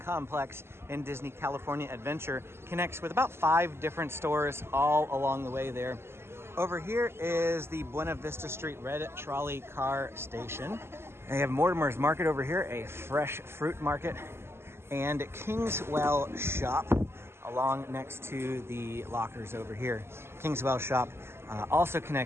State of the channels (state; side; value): late; left; 0.12 ms